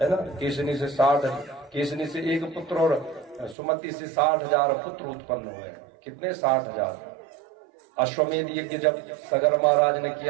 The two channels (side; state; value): left; drops out; at 3.6 s